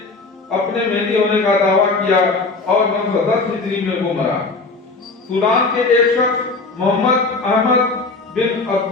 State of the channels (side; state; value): right; quieter; 3.7 dB